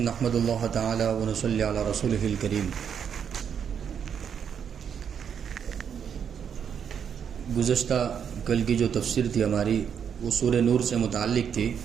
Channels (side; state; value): left; quieter; 7.8 dB